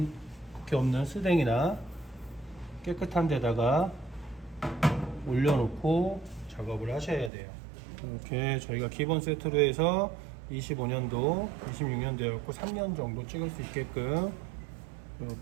없는 스댕이나 깨끗한 데다가 올려놓고 작업을 하셔야 돼요. 이렇게 저희가 기본 세트로 해서 25년도, 26년도였고 3년 정도 찍을 수 있게끔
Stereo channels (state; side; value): drops out; left; at 7.3 s